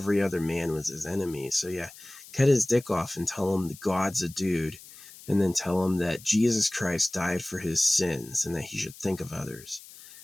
other man was his enemy. So yeah, cut his dick off and tell him the God's a dude, and then tell him that Jesus Christ died for his sins and that he should think of others.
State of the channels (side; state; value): left; noise; hiss, 19 dB below the sound